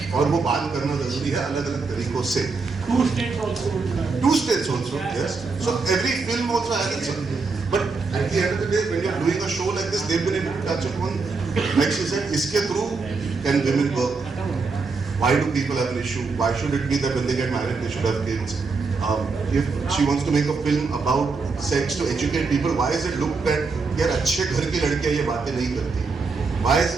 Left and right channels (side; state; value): left; quieter; 4.4 dB